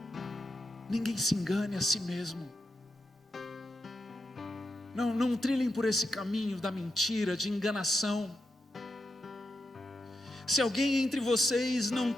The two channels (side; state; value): both; normal; correlation 0.86